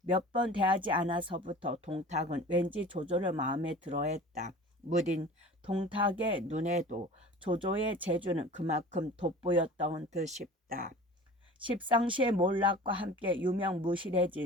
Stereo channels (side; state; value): both; normal; correlation 0.40